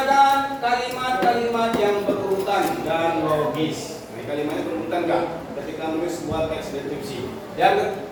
kalimat-kalimat yang berurutan dan logis. Nah, kalimatnya berurutan enggak? Ketika menulis sebuah teks deskripsi. Yang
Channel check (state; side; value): identical; both; correlation 1.00